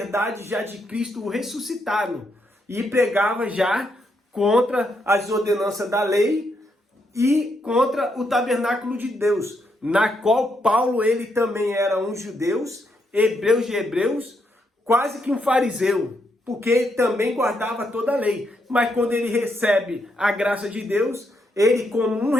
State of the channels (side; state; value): both; normal; correlation 0.78